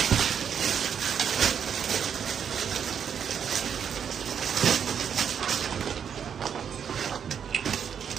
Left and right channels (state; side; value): quieter; left; 7.8 dB